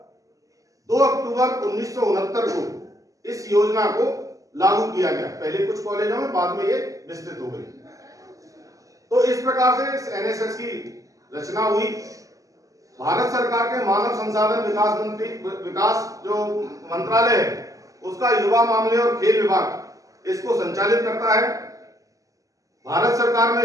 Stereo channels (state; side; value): late; left; 0.16 ms